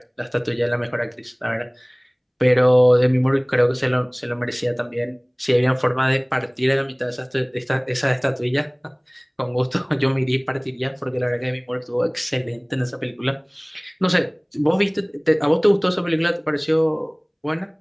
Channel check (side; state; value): both; identical; correlation 1.00